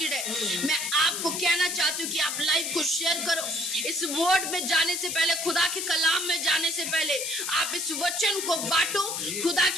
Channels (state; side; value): noise; left; hiss, 3 dB below the sound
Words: है, मैं आपको कहना चाहती हूँ कि आप लाइव को शेयर करो। इस वर्ड में जाने से पहले, खुदा के कलाम में जाने से पहले आप इस वचन को बांटो, खुदा